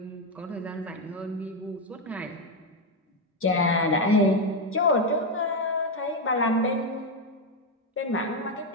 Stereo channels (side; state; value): both; normal; correlation 0.06